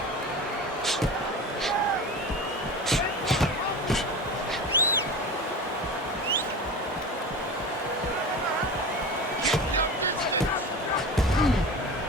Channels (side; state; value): both; normal; correlation 0.30